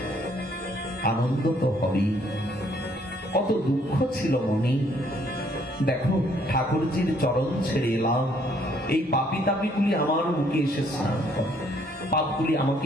আনন্দ তো হবেই। কত দুঃখ ছিল মনে। দেখো, ঠাকুরজির চরণ ছেড়ে এলাম, এই পাপি তাপিগুলি আমার মুখে এসে স্নান করে, পাপগুলি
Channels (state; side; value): normal; both; correlation 0.65